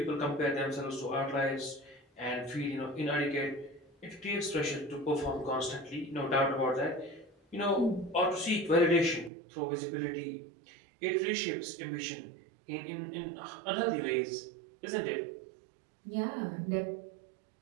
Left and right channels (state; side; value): drops out; left; at 9.3 s